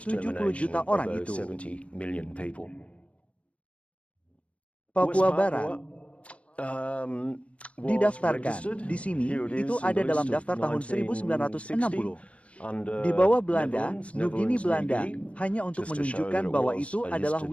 juta orang itu. Papua Barat didaftarkan di sini, itu ada dalam daftar tahun 1960. Di bawah Belanda, Nugini Belanda, hanya untuk menunjukkan bahwa itu adalah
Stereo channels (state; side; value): late; right; 0.063 ms